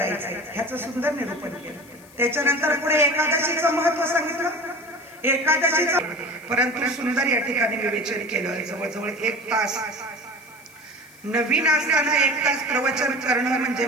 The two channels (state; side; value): noise; left; hiss, 25 dB below the sound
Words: ह्याचं सुंदर निरूपण केलं. त्याच्यानंतर पुढे एकादशीचं महत्व सांगितलं. एकादशीचं परंतु सुंदर या ठिकाणी विवेचन केलं. जवळजवळ 1 तास नवीन असताना 1 तास प्रवचन करणं म्हणजे